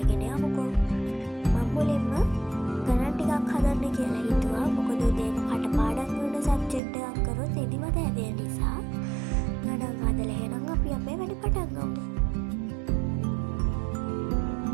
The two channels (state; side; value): drops out; left; at 6.8 s